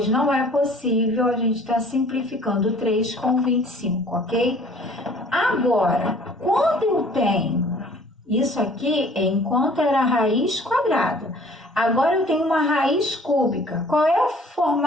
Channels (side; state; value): both; normal; correlation 0.53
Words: não é possível a gente estar simplificando 3 com 25, ok? Agora, quando eu tenho isso aqui é enquanto era a raiz quadrada. Agora eu tenho uma raiz cúbica. Qual é o